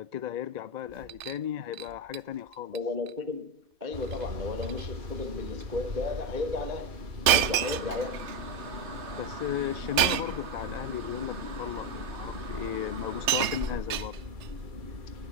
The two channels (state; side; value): late; left; 2.6 ms